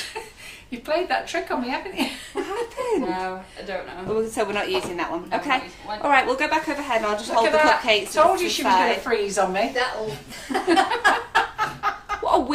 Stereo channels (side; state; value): both; identical; correlation 1.00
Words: You've played that trick on me, haven't you? No, I don't know. Oh, so we're not using that one. No, we're Okay. not using one. All right, we'll go back overhead and I'll just Look hold at the that. cupcakes. Told you to she the was going to side. freeze on me. That'll. What a